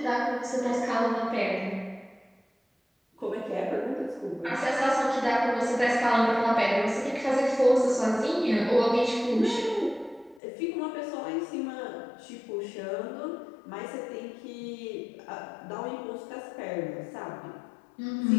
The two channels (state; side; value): drops out; right; at 10.4 s